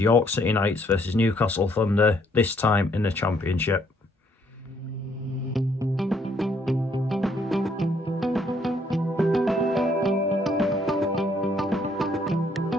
York City Knights versus Newcastle Thunder, this time in the Championship.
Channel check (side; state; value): both; normal; correlation 0.67